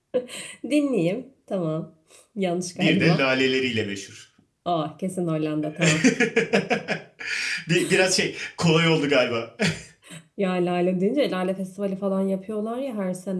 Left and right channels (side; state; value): both; identical; correlation 1.00